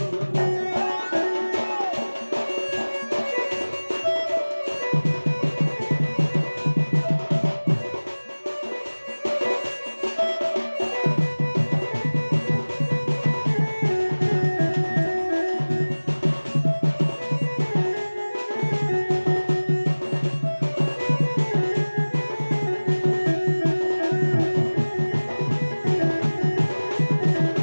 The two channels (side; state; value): both; inverted; correlation -1.00